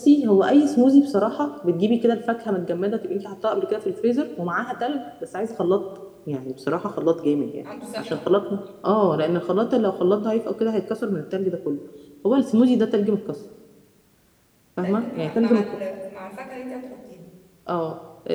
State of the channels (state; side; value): identical; both; correlation 1.00